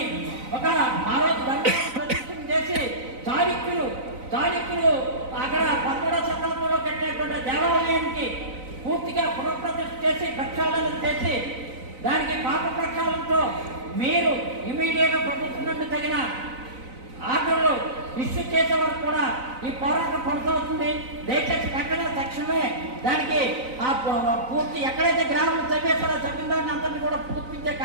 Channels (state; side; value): late; left; 3.9 ms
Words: ఆ రోజు ధర్మాన్ని ప్రతిష్ఠ చేసి చాళుక్యులు అక్కడ 11వ శతాబ్దంలో కట్టినటువంటి దేవాలయానికి పూర్తిగా పునఃప్రతిష్ఠ చేసి ప్రక్షాళన చేసి దానికి పాప ప్రక్షాళనతో మీరు ఇమీడియట్గా ప్రభుత్వం నుండి తగిన ఆర్డర్లు ఇష్యూ చేసే వరకు కూడా ఈ పోరాటం కొనసాగుతుంది. దయచేసి వెంటనే తక్షణమే దానికి ఆ పూర్తి ఎక్కడైతే గ్రామాలు చంపేస్తారో చంపిన దాన్ని అందరినీ కూడా పూర్తించే